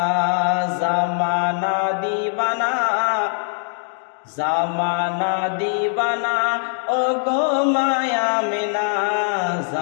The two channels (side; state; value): right; silent; digital silence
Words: জামানা দিবানা, জামানা দিবানা ও গো মায়া মিনা,